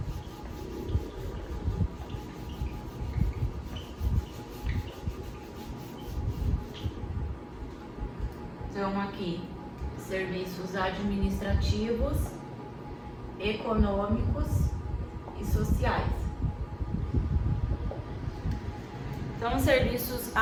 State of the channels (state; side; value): identical; both; correlation 1.00